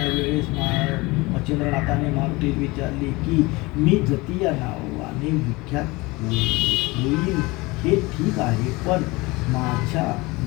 मच्छिंद्रनाथाने मारुतीला विचारले की मी जती या नावाने विख्यात होईल हे ठीक आहे, पण माझ्या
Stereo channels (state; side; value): quieter; right; 23.2 dB